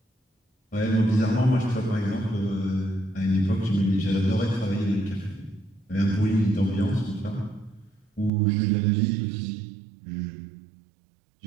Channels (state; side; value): drops out; left; at 8.3 s